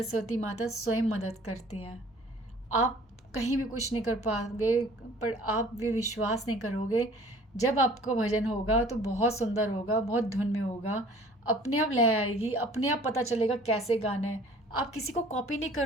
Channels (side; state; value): both; normal; correlation 0.51